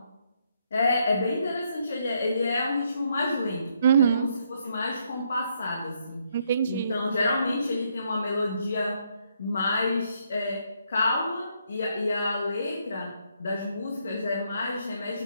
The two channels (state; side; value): inverted; both; correlation -0.74